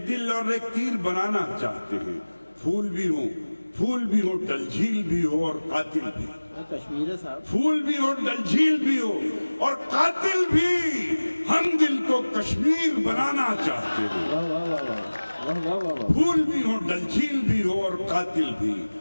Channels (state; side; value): inverted; both; correlation -1.00